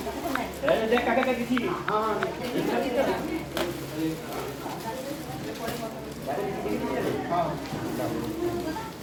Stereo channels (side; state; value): both; identical; correlation 1.00